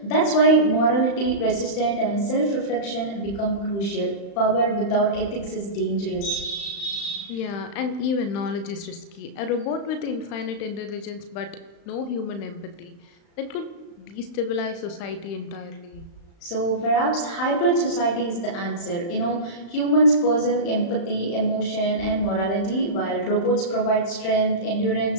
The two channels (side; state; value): right; late; 35 ms